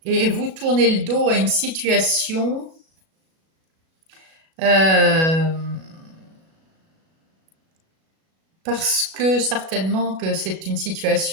et vous tournez le dos à une situation euh, parce que certainement que c'est une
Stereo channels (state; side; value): late; left; 37 ms